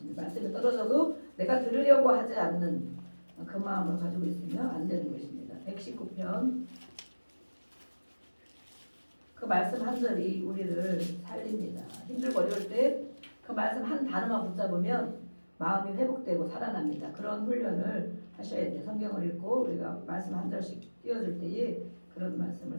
말씀이 떨어져도 내가 들으려고 하지 않는 그 마음을 가지고 있으면 안 되는 것입니다. 119편 그 말씀 한 절이 우리를 살립니다. 힘들고 어려울 때 그 말씀 한 단어만 붙잡으면 마음이 회복되고 살아납니다. 그런 훈련을 하셔야 돼요. 성경을 읽고 우리가 말씀 한 절씩 띄워줄 때에 그런 말씀을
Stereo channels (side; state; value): both; inverted; correlation -1.00